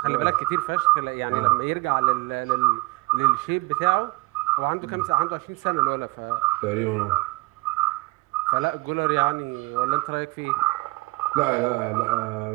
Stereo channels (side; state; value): left; quieter; 21.2 dB